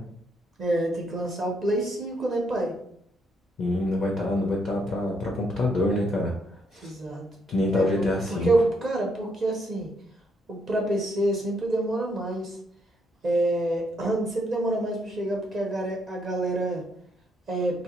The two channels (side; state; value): both; normal; correlation 0.74